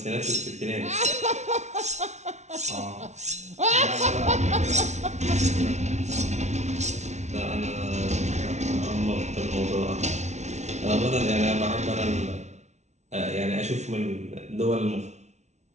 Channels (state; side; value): late; left; 0.32 ms